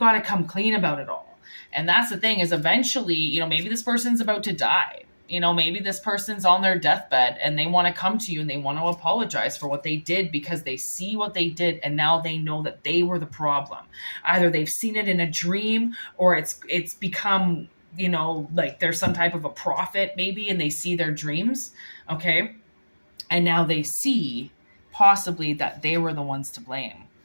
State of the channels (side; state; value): both; inverted; correlation -1.00